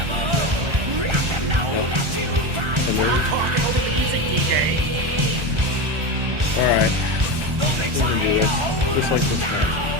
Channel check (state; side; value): late; left; 1.4 ms